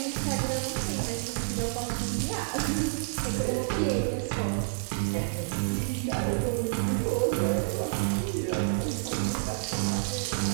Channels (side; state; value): left; silent; digital silence